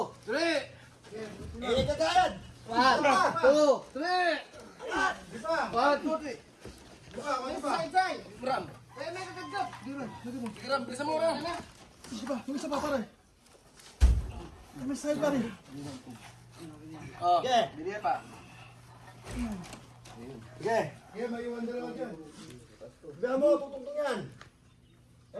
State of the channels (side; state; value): both; identical; correlation 1.00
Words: 3. Init ka kayad! 1, 2, 3. Angat! 1, 2, 3. Side. Ram. Kaya may kagagap. Ram, bilisan mo ram. Yung isa pa pare. May side pa rin. Oh, Sige! bili pa. Sige! Kaya may iwan dalawa dyan. Sabihan mo, tutungtong yan!